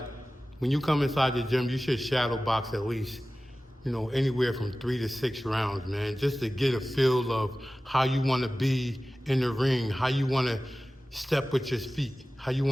when you come inside the gym, you should shadow box at least, anywhere from 3 to 6 rounds, man, just to get a feel of how you want to be in the ring, how you want to step with your feet, how you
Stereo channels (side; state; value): both; normal; correlation 0.96